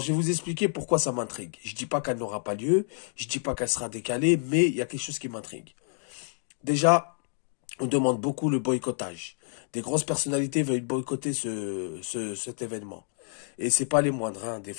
vais vous expliquer pourquoi ça m'intrigue. Je dis pas qu'elle n'aura pas lieu, je dis pas qu'elle sera décalée, mais il y a quelque chose qui m'intrigue. Déjà, on demande beaucoup le boycottage. Des grosses personnalités veulent boycotter cet événement. Et c'est pas les moindres, hein. Des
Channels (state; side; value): silent; right; 59 dB below the other